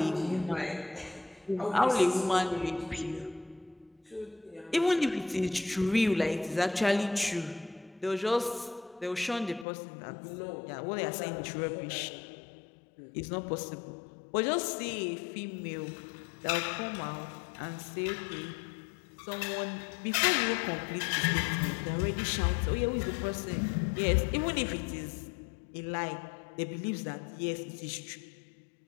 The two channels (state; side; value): drops out; right; at 9.7 s